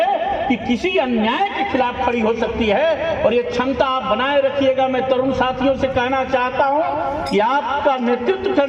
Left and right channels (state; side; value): identical; both; correlation 1.00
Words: कि किसी अन्याय के खिलाफ खड़ी हो सकती है। और यह क्षमता आप बनाए रखिएगा। मैं तरुण साथियों से कहना चाहता हूं कि आपका नेतृत्व